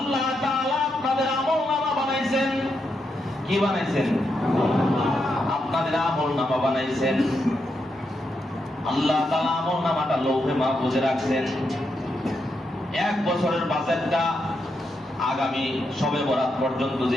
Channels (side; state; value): both; normal; correlation 0.83